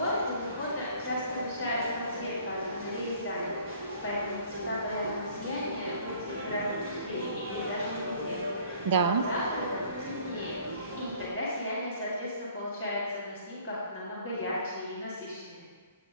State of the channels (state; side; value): inverted; both; correlation -0.54